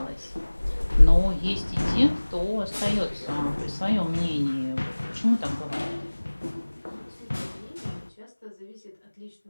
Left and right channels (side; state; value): both; inverted; correlation -1.00